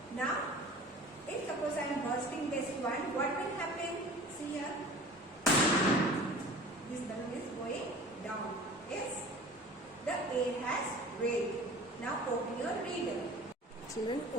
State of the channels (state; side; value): normal; both; correlation 0.42